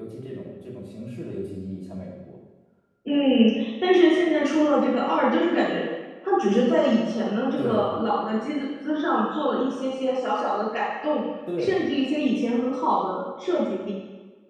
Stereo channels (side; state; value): both; identical; correlation 1.00